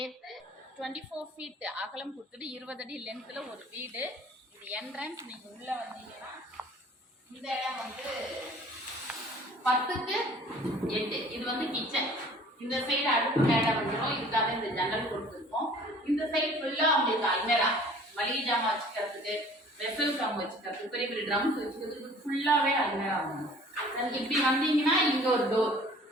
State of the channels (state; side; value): normal; both; correlation 0.50